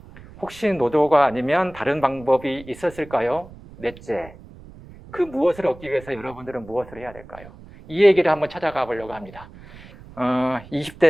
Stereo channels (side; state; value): right; noise; rumble, 19 dB below the sound